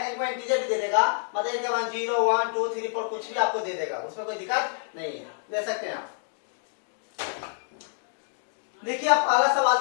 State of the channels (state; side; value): silent; right; 60 dB below the other